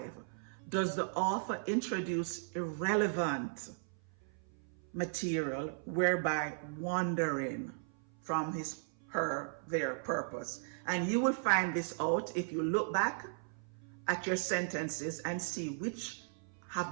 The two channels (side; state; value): left; silent; 53 dB below the other